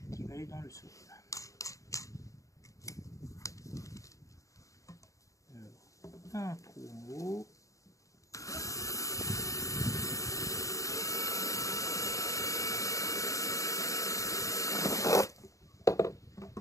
qui va aller dans le sol. Un trou en haut,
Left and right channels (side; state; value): right; late; 0.16 ms